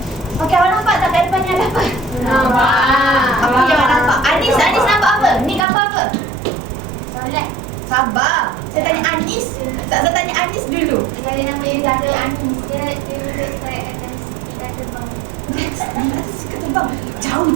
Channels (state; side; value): drops out; left; at 5.7 s